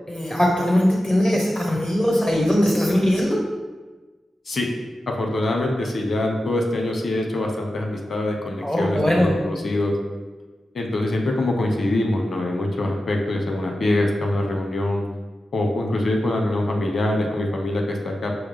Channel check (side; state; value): both; normal; correlation 0.92